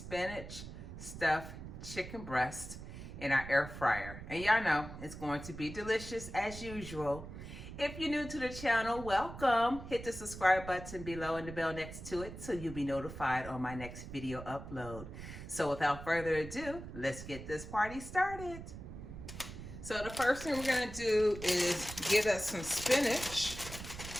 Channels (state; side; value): noise; right; rumble, 11 dB below the sound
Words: stuffed chicken breast in our air fryer. And y'all know it's going to be delicious as usual. If you're new to the channel, welcome. Hit the subscribe button below and the bell next to it so you'll be notified on my next video upload. So without further ado, let's get this party started. So the first thing we're gonna do is get us some spinach